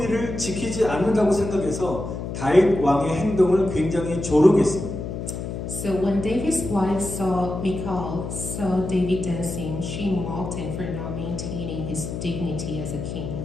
지키지 않는다고 생각해서 다윗 왕의 행동을 굉장히 조롱했습니다. So when David's wife Michal saw David dancing, she mocked him for not maintaining his dignity as a king.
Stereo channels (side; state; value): left; noise; hum, 6 dB below the sound